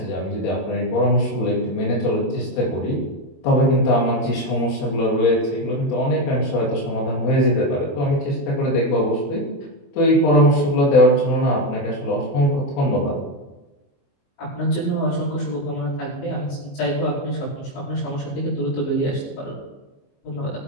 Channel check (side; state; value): right; late; 21 ms